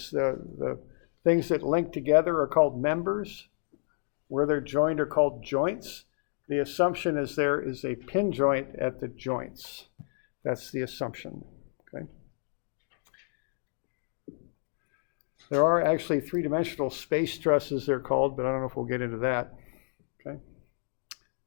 The things that link together are called members. Where they're joined are called joints. The assumption is there is a pin joint at the joints. That's the assumption. Okay. There are actually three-dimensional space trusses, they're called, but I don't know if we'll get into that. Okay.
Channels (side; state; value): right; silent; digital silence